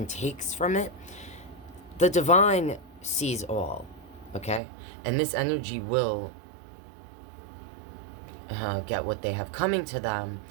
takes from it, the divine sees all, okay? And this energy will get what they have coming to them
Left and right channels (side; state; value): left; drops out; at 4.6 s